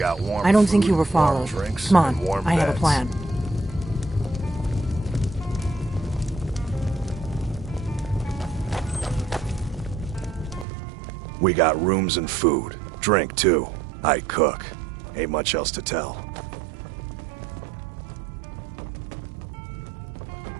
warm I don't food, think you were warm followed. drinks, Come on, and warm I have a beds. plan. We got rooms and food. Drink, too. I cook. Ain't much else to tell.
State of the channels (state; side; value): drops out; left; at 10.7 s